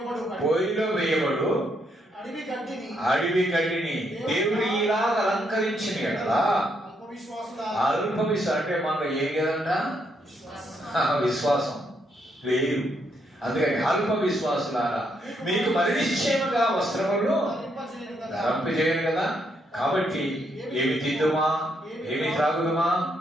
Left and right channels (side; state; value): both; normal; correlation 0.76